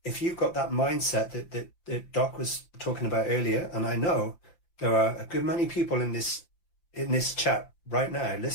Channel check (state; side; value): late; right; 5.8 ms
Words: that mindset that Doc was talking about earlier, and I know there are a good many people in this chat right now